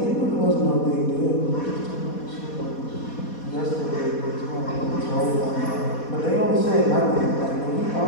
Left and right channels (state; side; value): late; right; 4.2 ms